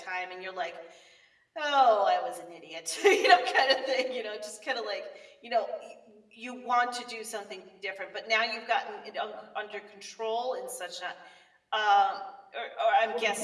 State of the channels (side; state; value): both; identical; correlation 1.00